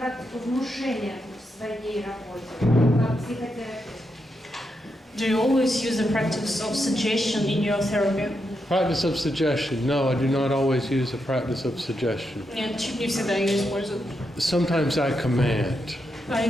внушения в своей работе, как психотерапевт? Do you always use the practice of suggestion in your therapy? Practice of suggestion. No, I do not always use the practice of suggestion. Нет, Чип не всегда ее использует. Sometimes I command. А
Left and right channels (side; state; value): both; normal; correlation 0.83